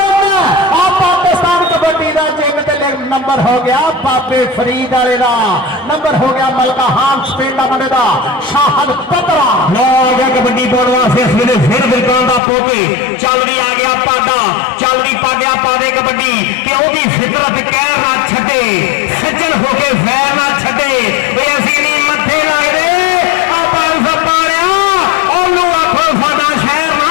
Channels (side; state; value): right; drops out; at 12.4 s